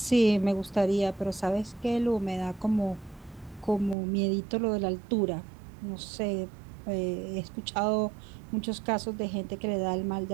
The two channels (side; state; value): left; drops out; at 4.0 s